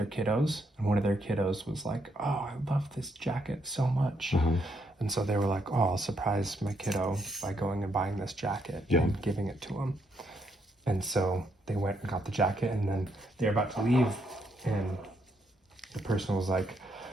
kiddos, and one of their kiddos was like, "Oh, I love this jacket so much." And so they were like, "Oh, I'll surprise my kiddo by going and buying this jacket and giving it to him." And so they went and got the jacket, and then they're about to leave, and the person was like,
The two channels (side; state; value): both; normal; correlation 0.76